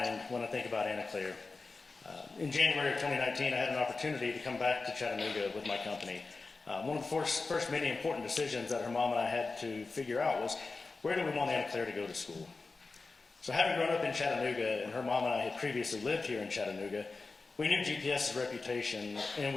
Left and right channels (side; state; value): right; quieter; 3.9 dB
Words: when I think about Anna Claire. In January of 2019, I had an opportunity to come back to Chattanooga with my company. One of the first many important decisions that her mom and I had to figure out was, where do we want Anna Claire to go to school? So having grown up in Chattanooga, and her mom and I had previously lived here in Chattanooga, we knew GPS's reputation, and